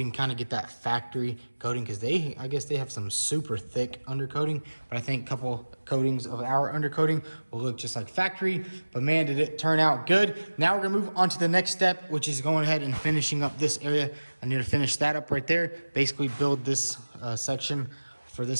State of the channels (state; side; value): inverted; both; correlation -1.00